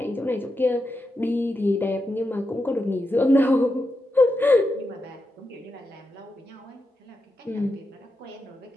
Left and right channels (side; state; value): both; normal; correlation 0.87